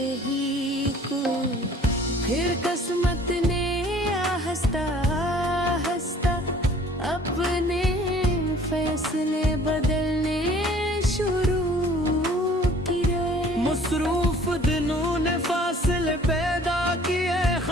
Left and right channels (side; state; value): both; normal; correlation 0.53